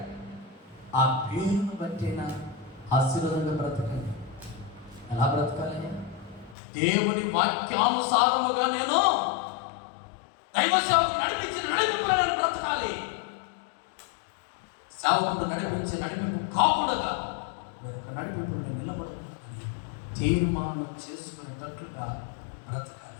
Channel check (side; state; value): right; drops out; at 6.6 s